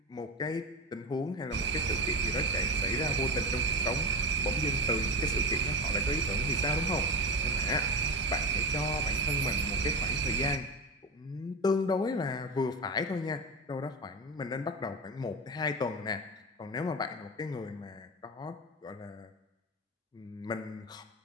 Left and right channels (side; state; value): both; normal; correlation 0.22